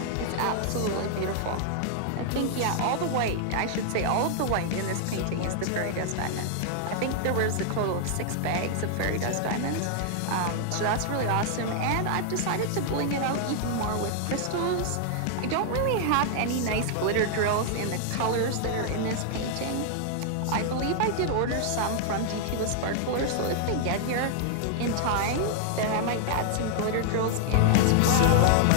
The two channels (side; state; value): both; different; correlation 0.00